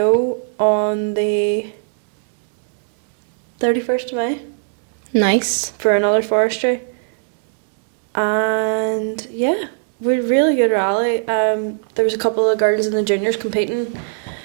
on the 31st of May Nice. for another forestry. And yeah, we had a really good rally. There was a couple of girls in the juniors competing,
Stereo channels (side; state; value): left; silent; 67 dB below the other